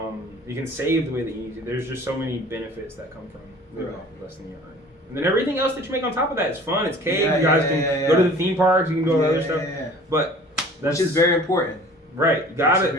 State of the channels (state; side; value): normal; both; correlation 0.46